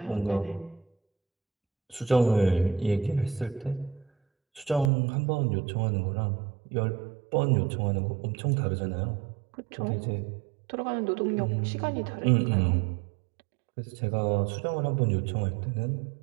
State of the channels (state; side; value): drops out; left; at 4.9 s